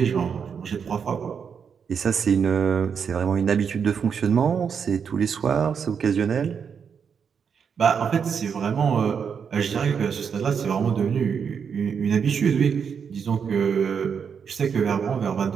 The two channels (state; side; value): quieter; left; 6.8 dB